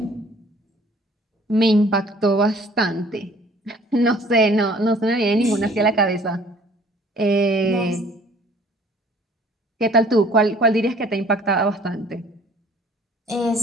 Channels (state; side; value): normal; both; correlation 0.54